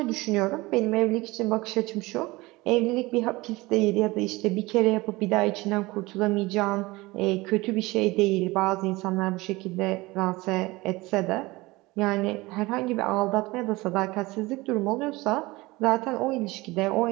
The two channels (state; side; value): quieter; left; 21.4 dB